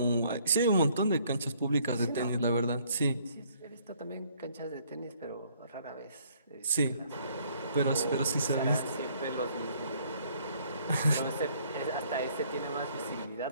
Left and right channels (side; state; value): both; inverted; correlation -0.63